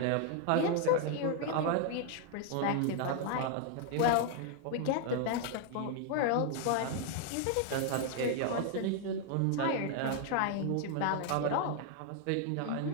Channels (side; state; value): both; different; correlation 0.00